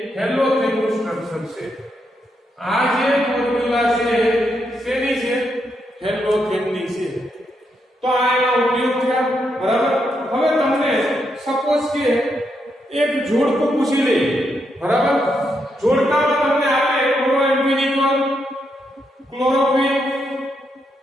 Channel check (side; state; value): both; normal; correlation 0.80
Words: હેલોથેનનું સ્ટ્રક્ચર છે. આ જે ફોર્મ્યુલા છે શેની છે? હેલોથેનની છે. તો આ એનો ઉપયોગ થયા. બરાબર. હવે તમને સપોઝ કે એક જોડકું પૂછી લે. બરાબર. જોડકામાં તમને આપે ક્લોરોએન્ફિનિકોલ, ક્લોરોક્વિન,